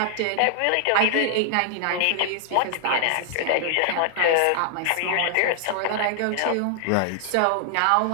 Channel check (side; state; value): both; different; correlation 0.00